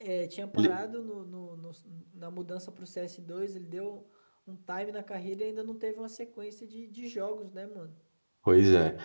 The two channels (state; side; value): inverted; both; correlation -1.00